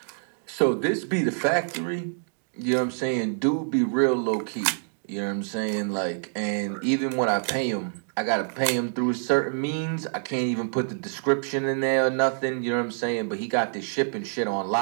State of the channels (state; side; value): silent; left; digital silence